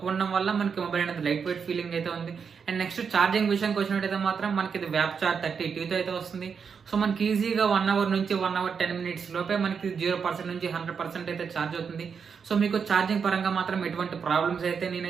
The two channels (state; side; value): quieter; left; 6.3 dB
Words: ఉండడం వల్ల మనకి మొబైల్ అనేది లైట్ వెయిట్ ఫీలింగ్ అయితే ఉంది. అండ్ నెక్స్ట్ ఛార్జింగ్ విషయానికి వచ్చినట్టయితే మాత్రం మనకి ఇది వ్యాప్ చార్జ్ 30T అయితే వస్తుంది. సో మనకి ఈజీగా 1 hour నుంచి 1 hour 10 minutes లోపే మనకి 0% నుంచి 100% అయితే ఛార్జ్ అవుతుంది. సో మీకు ఛార్జింగ్ పరంగా మాత్రం ఎటువంటి ప్రాబ్లమ్స్ అయితే